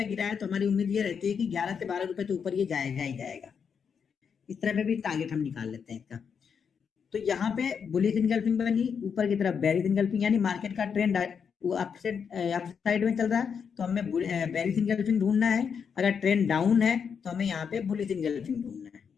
गिरा है, तो हमारी उम्मीद ये रहती है कि 11 से 12 रुपए तो ऊपर ये जाएगा ही जाएगा। इस तरह पे भी टारगेट हम निकाल लेते हैं इसका। तो यहाँ पे बुलिश इनगल्फिंग बनी, ऊपर की तरफ बेरिश इनगल्फिंग, यानी मार्केट का ट्रेंड वो अप साइड में चल रहा है, तो हमें बेरिश इनगल्फिंग ढूंढना है। अगर ट्रेंड डाउन है तो हमें यहाँ पे बुलिश इनगल्फिंग ढूंढना है।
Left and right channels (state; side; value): quieter; right; 6.7 dB